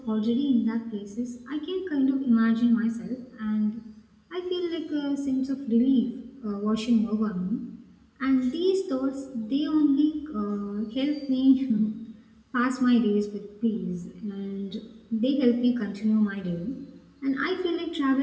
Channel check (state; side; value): identical; both; correlation 1.00